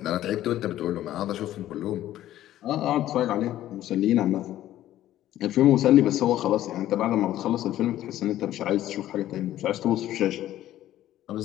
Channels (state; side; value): quieter; right; 13.4 dB